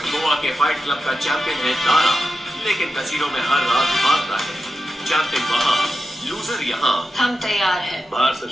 गोवा के फाइट क्लब का चैंपियन है दारा, लेकिन कसीनो में हर रात भागता है। चैंपियन वहां, लूजर यहाँ। हम तैयार हैं। बाहर से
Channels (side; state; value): both; normal; correlation 0.90